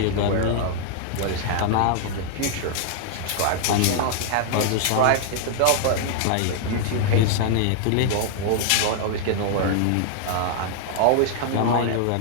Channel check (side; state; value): both; different; correlation 0.00